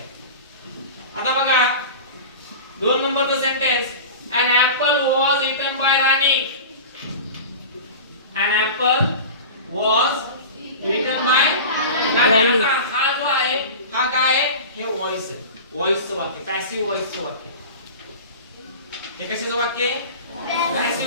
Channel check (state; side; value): inverted; both; correlation -0.32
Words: आता बघा 2 नंबरचं sentence, an apple was eaten by Rani. An apple was eaten by Rani. हा जो आहे हा काय आहे, हे व्हॉइस आहे, व्हॉइसचं वाक्य, पॅसिव्ह व्हॉइसचं वाक्य. हे कशाचं वाक्य आहे,